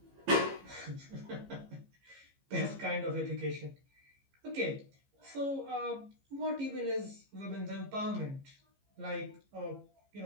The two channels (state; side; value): late; left; 15 ms